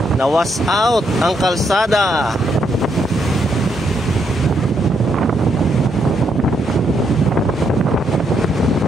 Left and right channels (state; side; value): normal; both; correlation 0.76